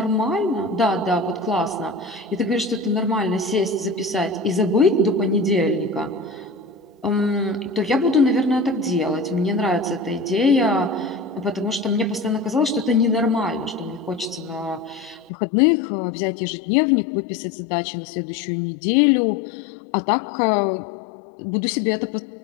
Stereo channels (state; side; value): drops out; right; at 15.3 s